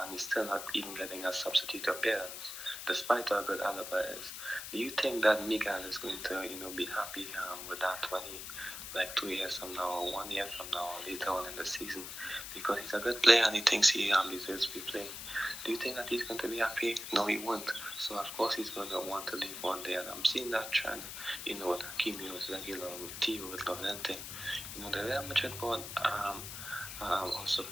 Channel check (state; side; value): noise; left; hiss, 8 dB below the sound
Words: and he's still not even getting a substitute appearance, despite how good Alaba is. Do you think that Miguel is going to, be happy with that when he, 2 years from now, or 1 year from now, or later on in the season, because he's a good player and he thinks he deserves to be playing? Do you think that he's going to be happy? No, he won't. So of course he's going to want to leave one day, and I'm seeing that trend. With Hakimi, with Regular, with Tio, with Levante. The Real Madrid board also